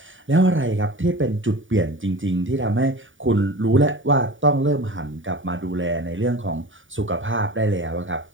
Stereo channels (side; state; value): left; late; 0.57 ms